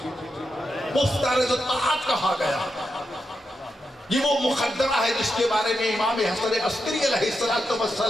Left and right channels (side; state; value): both; normal; correlation 0.86